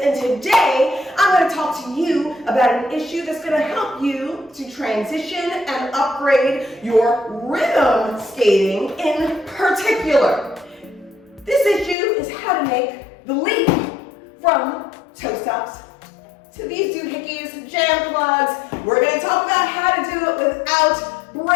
and today I'm going to talk to you about an issue that's going to help you to transition and upgrade your rhythm skating in particular. This issue is how to make the leap from toe stops to these doohickeys, jam plugs. We're going to talk about how to do it without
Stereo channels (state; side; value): drops out; right; at 12.0 s